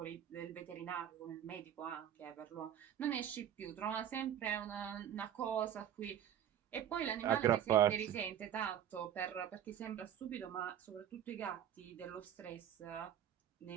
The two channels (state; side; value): quieter; left; 10.0 dB